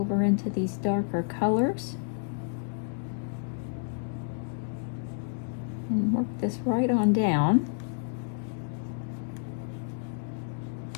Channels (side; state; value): right; silent; digital silence